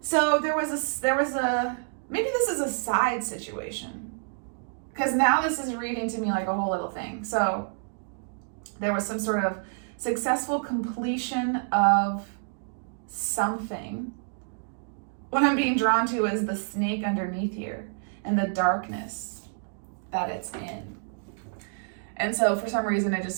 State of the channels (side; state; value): left; silent; digital silence